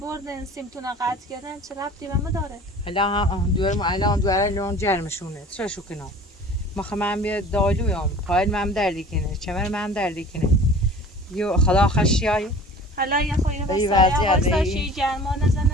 سیمتون قطع کردن چه ربطی به ما داره حالا هم الان دوره لون جرمشونه چه شو کنم مخ من بیاد دالویم پایل من دردی کنه چمر من دردی کنه یو خدا خشیای حالا یه خویه ای واسه وضعیت، واسه ای- شی گرما نزنه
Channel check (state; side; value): normal; both; correlation 0.44